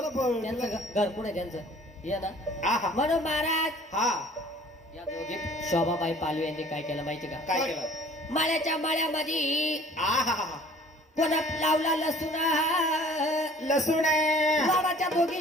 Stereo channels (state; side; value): normal; both; correlation 0.51